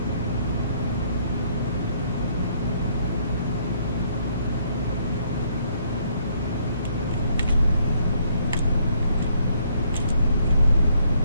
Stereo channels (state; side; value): inverted; both; correlation -0.67